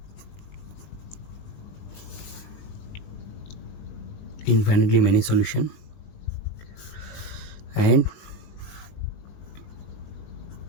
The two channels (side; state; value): right; late; 20 ms